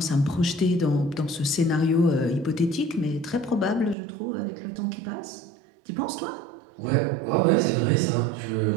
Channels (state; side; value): drops out; left; at 4.0 s